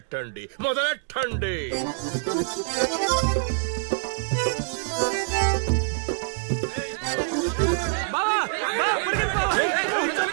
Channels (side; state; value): left; silent; 57 dB below the other